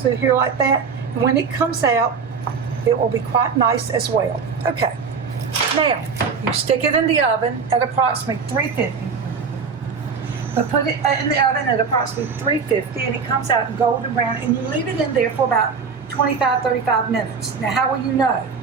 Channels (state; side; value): quieter; left; 5.6 dB